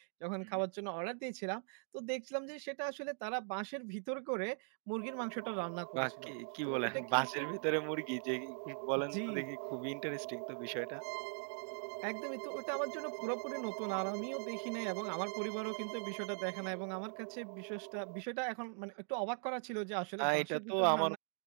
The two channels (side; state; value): left; silent; 51 dB below the other